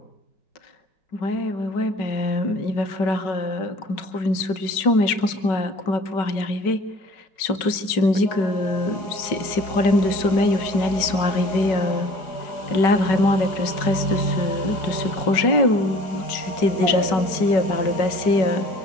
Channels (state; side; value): late; right; 5.3 ms